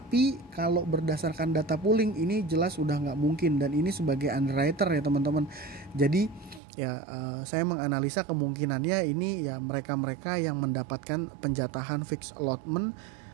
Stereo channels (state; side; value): drops out; left; at 6.6 s